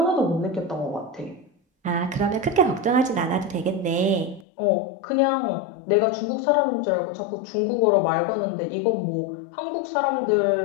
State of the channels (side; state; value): right; drops out; at 4.5 s